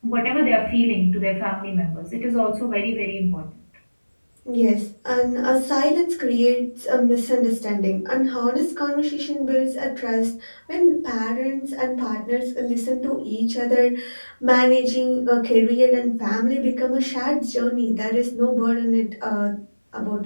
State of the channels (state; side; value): inverted; both; correlation -1.00